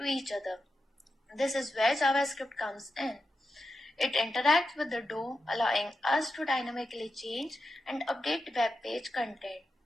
each other. This is where JavaScript comes in. It interacts with the DOM, allowing us to dynamically change and update web page content.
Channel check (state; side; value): normal; both; correlation 0.89